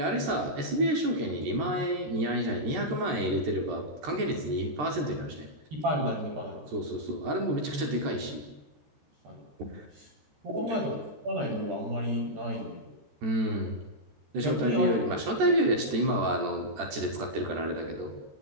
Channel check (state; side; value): late; left; 13 ms